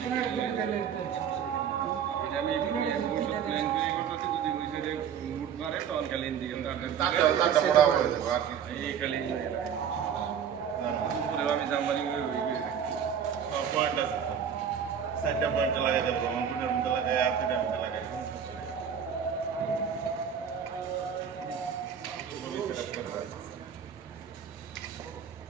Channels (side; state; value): left; quieter; 8.0 dB